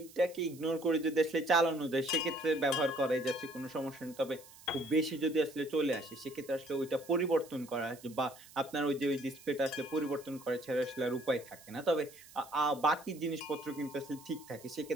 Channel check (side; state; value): right; noise; hiss, 21 dB below the sound